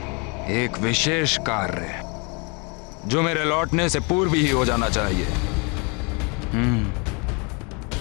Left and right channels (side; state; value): right; quieter; 32.1 dB